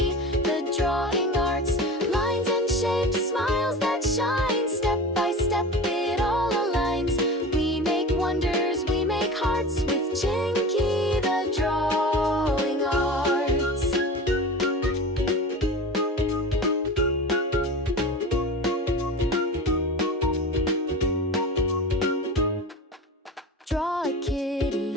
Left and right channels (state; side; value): normal; both; correlation 0.31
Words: the Drawing Arts. Lines and shapes, smiles that shine, step by step it all aligns. We make wonders, we make hearts with Chinky the Drawing Arts. Draw a